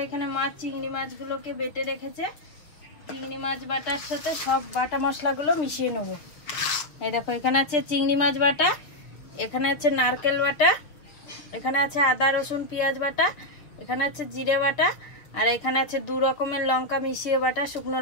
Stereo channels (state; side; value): late; right; 6.3 ms